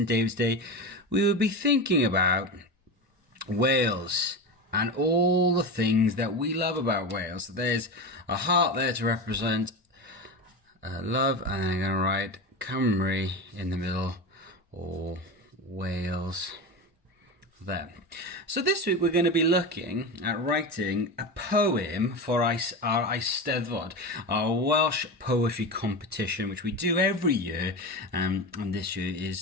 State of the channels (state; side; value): normal; both; correlation 0.23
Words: David's Day, we would be thinking about Wales and all the things that we love about Wales. So there's a heart there to represent love, and I'm going to write Cymru in the middle, or Wales there. So this week we're going to be looking at writing a poem for our Eisteddfod, our Welsh poetry competition, which we do every year, and this year